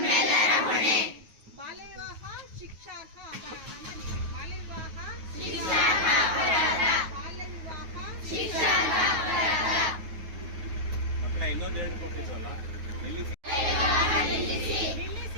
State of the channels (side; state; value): left; late; 9.4 ms